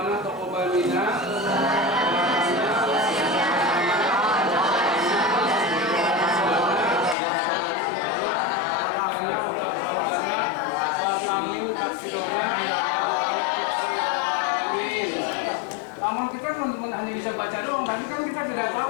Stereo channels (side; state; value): right; drops out; at 7.2 s